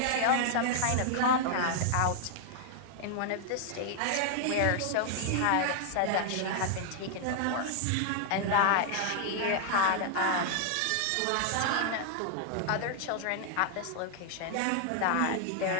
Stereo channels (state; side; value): different; both; correlation 0.00